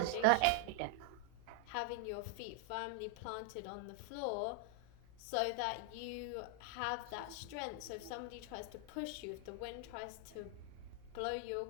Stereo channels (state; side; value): different; both; correlation 0.00